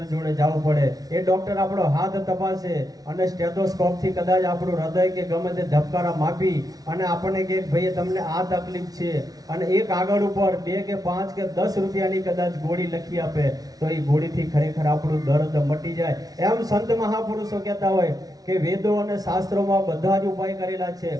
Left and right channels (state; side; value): late; left; 0.18 ms